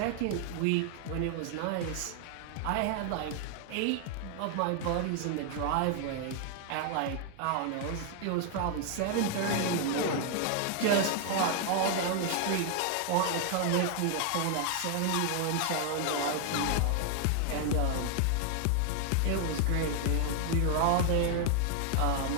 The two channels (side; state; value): both; different; correlation 0.00